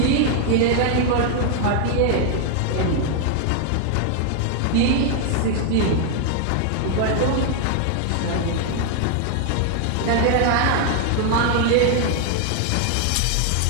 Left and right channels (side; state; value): both; different; correlation 0.00